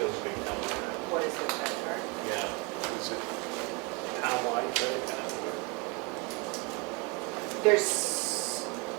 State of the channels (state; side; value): quieter; left; 28.3 dB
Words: big number. What is the credit card? Yeah. Is it townwide credit card? There's